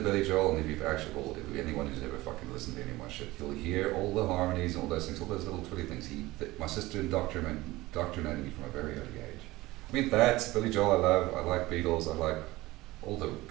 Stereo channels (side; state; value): left; quieter; 19.2 dB